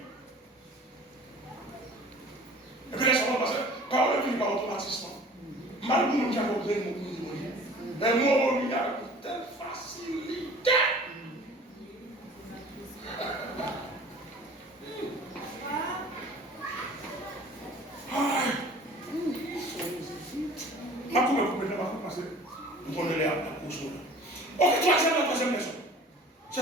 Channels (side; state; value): both; normal; correlation 0.45